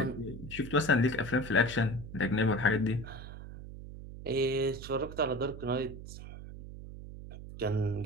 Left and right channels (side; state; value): right; noise; hum, 12 dB below the sound